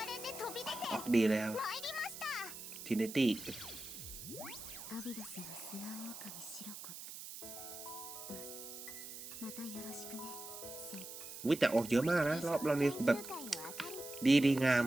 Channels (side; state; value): right; noise; hiss, 11 dB below the sound